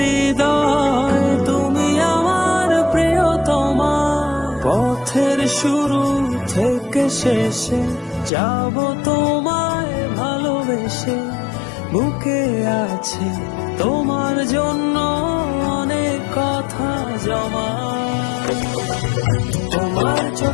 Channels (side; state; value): right; drops out; at 8.3 s